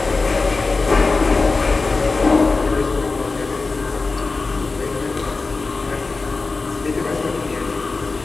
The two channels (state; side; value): quieter; right; 3.9 dB